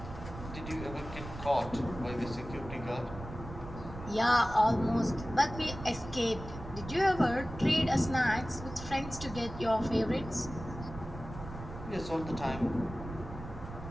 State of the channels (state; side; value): noise; right; rumble, 11 dB below the sound